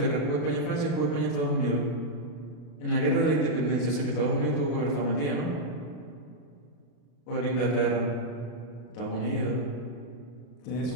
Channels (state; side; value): late; right; 33 ms